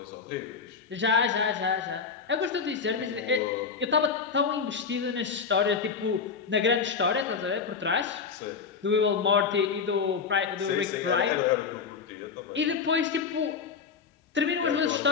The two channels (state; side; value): quieter; right; 5.8 dB